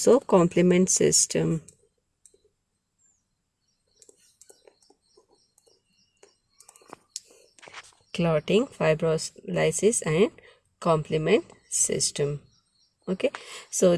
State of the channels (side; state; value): both; identical; correlation 1.00